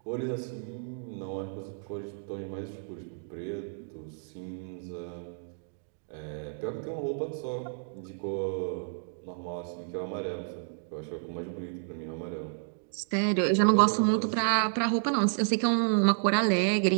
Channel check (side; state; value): left; silent; digital silence